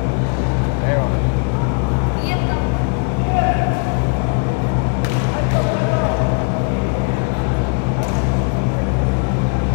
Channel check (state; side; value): quieter; right; 39.1 dB